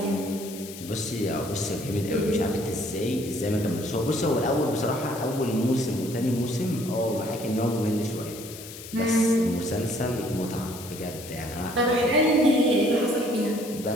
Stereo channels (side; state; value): left; noise; hiss, 14 dB below the sound